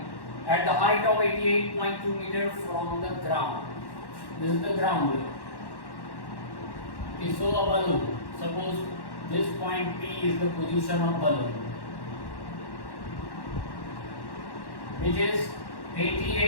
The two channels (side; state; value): right; late; 1.1 ms